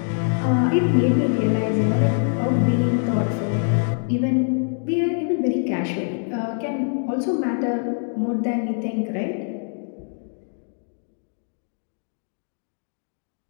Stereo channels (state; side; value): silent; right; 63 dB below the other